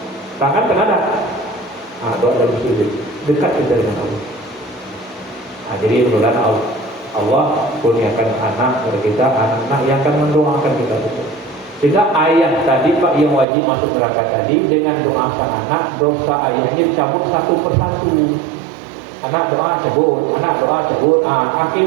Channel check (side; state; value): left; drops out; at 13.5 s